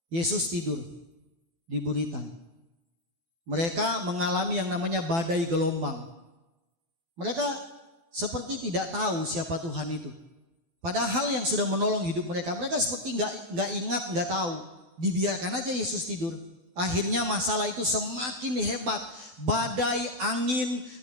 Yesus tidur di buritan. Mereka mengalami yang namanya badai gelombang. Mereka seperti tidak tahu siapa Tuhan itu. Padahal yang sudah menolong hidup mereka, mereka seperti nggak ingat, nggak tahu. Dibiarkan aja Yesus tidur. Akhirnya masalah itu semakin hebat. Badai, angin,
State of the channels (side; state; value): left; late; 12 ms